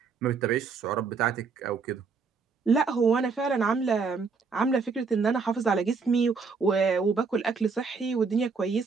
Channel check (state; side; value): quieter; left; 5.0 dB